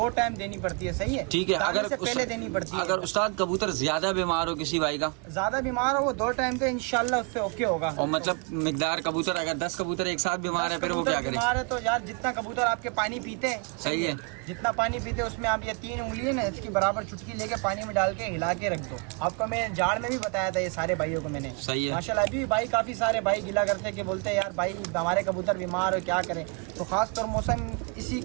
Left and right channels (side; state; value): left; quieter; 35.0 dB